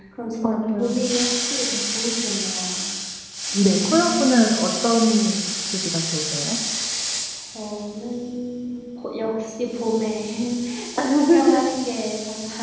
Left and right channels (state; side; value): identical; both; correlation 1.00